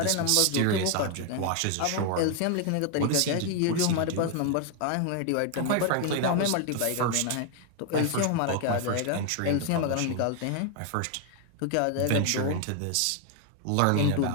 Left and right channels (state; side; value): different; both; correlation 0.01